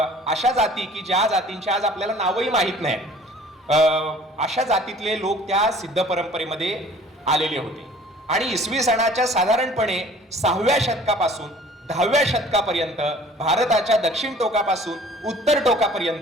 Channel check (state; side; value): normal; both; correlation 0.50